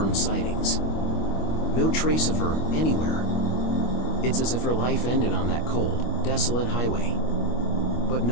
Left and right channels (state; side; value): late; right; 25 ms